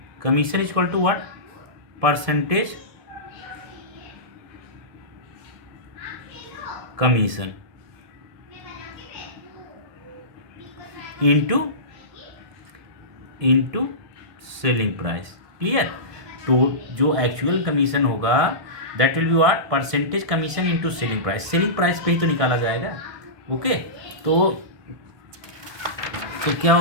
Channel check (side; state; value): left; late; 1.7 ms